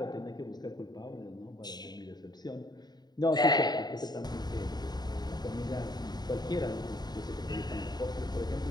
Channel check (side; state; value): right; late; 0.20 ms